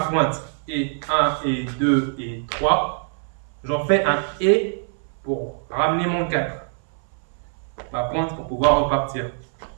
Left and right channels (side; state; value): left; silent; 63 dB below the other